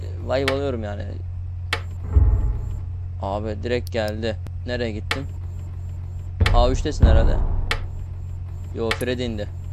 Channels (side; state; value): both; identical; correlation 1.00